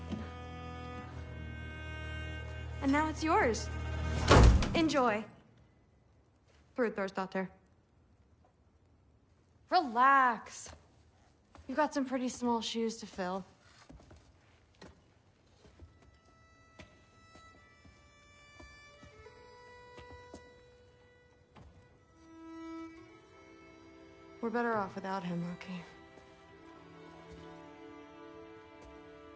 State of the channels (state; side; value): identical; both; correlation 1.00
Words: And now it's yours. Enjoy. Daughter. Relax. You've got some pretty small shoes to fill. We're better off without him, Loki.